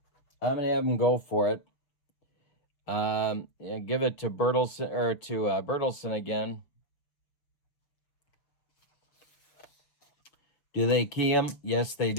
I'm going to have him go for it. Give it to Bertelsen, or to Bertelsen again. Do they key him? Yes, they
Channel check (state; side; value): late; right; 6.5 ms